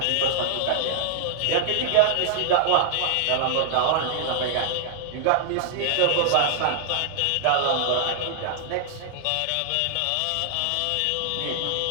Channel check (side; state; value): both; different; correlation -0.01